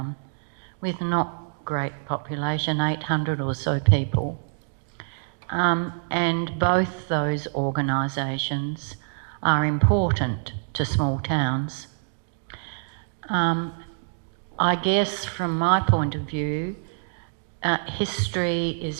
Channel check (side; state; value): left; silent; digital silence